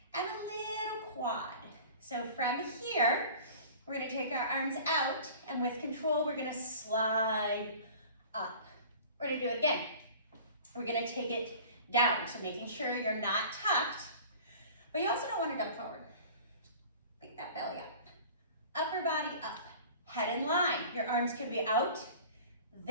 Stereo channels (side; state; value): both; inverted; correlation -0.43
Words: and a little quad. So from here, we're gonna take our arms out, and with control, we're gonna slide up. We're gonna do it again. We're gonna take it down, so making sure you're not tucked, but you also don't wanna dump forward. Pick that belly up. Upper body up, head in line. Your arms can be out,